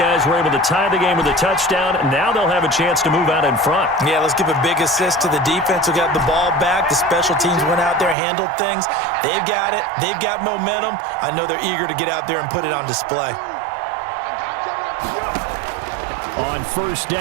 were able to tie the game with a touchdown, and now they'll have a chance to move out in front. Yeah, let's give a big assist to the defense who got the ball back. The special teams went out there, handled things. They've got it. They've got momentum. I know they're eager to get out there and put it on display. On 1st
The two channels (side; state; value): left; drops out; at 8.2 s